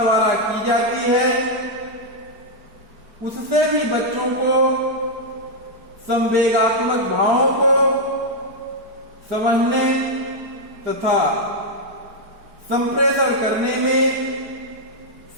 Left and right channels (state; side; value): late; left; 4.5 ms